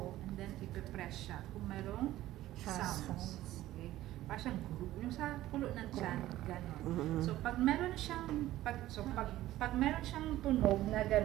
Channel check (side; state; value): left; quieter; 15.0 dB